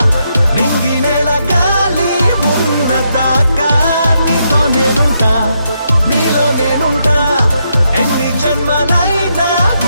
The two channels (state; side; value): inverted; both; correlation -0.79